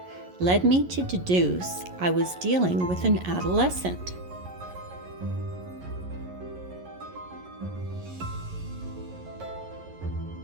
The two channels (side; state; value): left; late; 11 ms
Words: led me to deduce I was dealing with an adolescent.